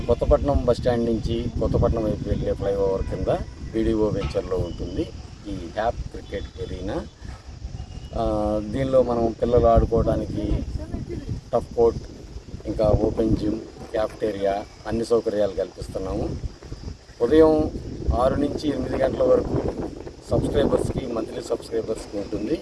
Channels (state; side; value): identical; both; correlation 1.00